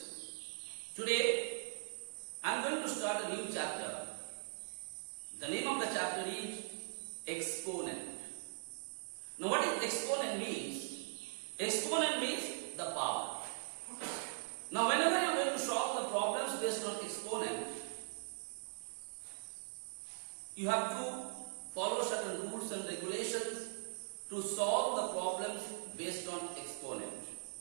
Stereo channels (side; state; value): left; silent; digital silence